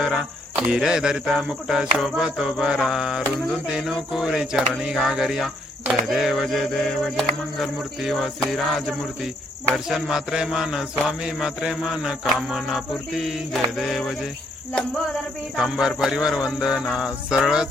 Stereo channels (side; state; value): both; normal; correlation 0.70